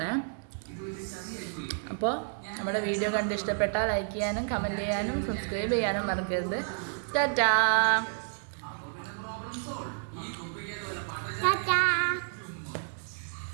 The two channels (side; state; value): left; silent; digital silence